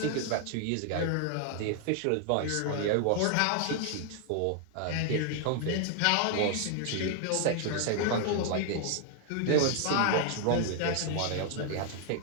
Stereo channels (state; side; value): different; both; correlation 0.00